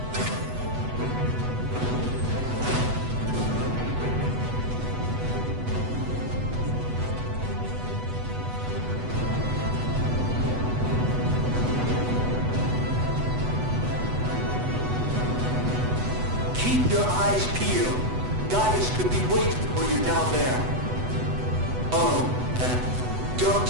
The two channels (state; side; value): late; left; 8.1 ms